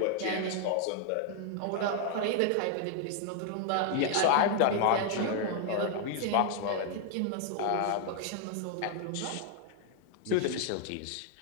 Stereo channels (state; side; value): different; both; correlation 0.00